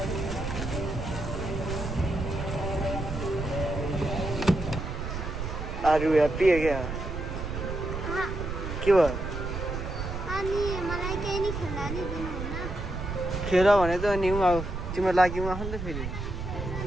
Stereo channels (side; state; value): right; noise; rumble, 5 dB below the sound